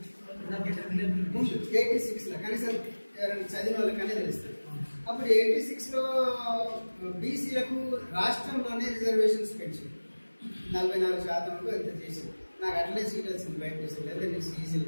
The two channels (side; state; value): both; inverted; correlation -1.00